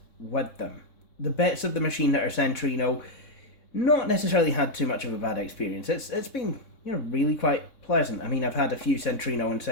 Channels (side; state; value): right; late; 3.6 ms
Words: with them. The bits of the machine that are Centrino, not necessarily had too much of a bad experience. It's been, really quite pleasant. I mean, I've had a few Centrino and